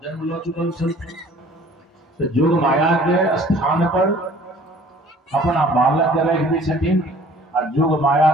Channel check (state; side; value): normal; both; correlation 0.52